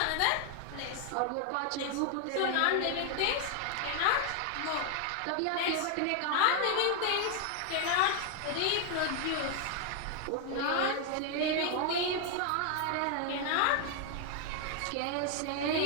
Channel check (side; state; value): both; different; correlation 0.00